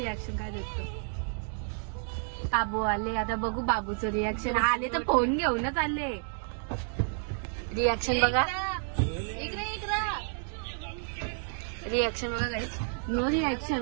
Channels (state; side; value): silent; left; 57 dB below the other